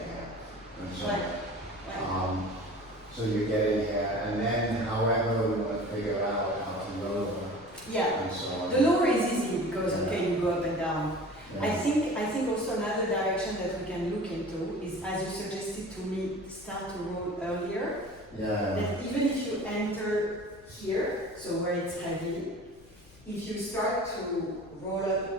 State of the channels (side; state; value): left; noise; rumble, 25 dB below the sound